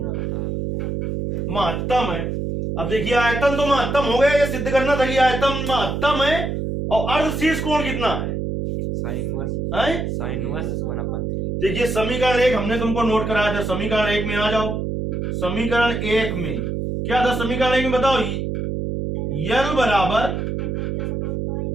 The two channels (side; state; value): right; noise; hum, 2 dB below the sound